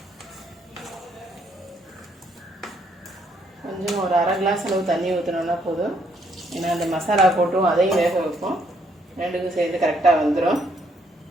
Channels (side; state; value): both; normal; correlation 0.71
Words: கொஞ்சம் ஒரு அரை கிளாஸ் அளவு தண்ணி ஊற்றினோன்னா போதும். ஏன்னா அந்த மசாலா போட்டும் அதையும் வேக வைப்போம். ரெண்டுக்கும் சேர்ந்து கரெக்டாக வந்துடும்.